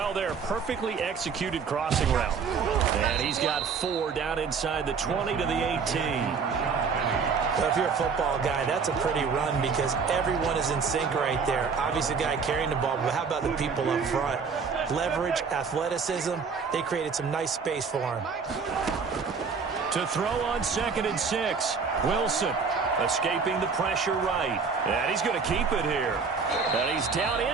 there. Perfectly executed crossing route. And he's got 4 down inside the 20 to the 18. But if you're a football guy, that's a pretty run because everyone is in sync right there. Obviously, the guy carrying the ball, but how about the people up front? Leverage, athleticism, they created some nice space for him. To throw on 2nd and 6, Wilson escaping the pressure right. And he's going to keep it here. And he's down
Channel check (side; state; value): left; quieter; 5.5 dB